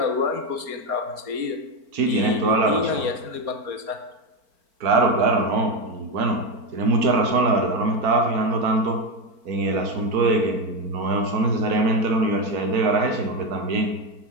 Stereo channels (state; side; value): late; left; 4.4 ms